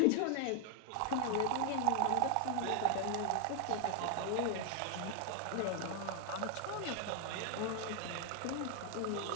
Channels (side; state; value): both; different; correlation 0.00